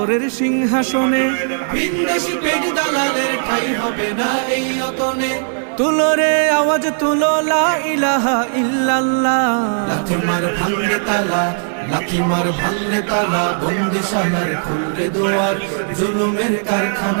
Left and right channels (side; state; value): left; silent; 68 dB below the other